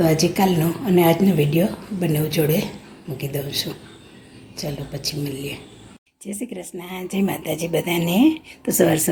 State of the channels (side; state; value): both; identical; correlation 1.00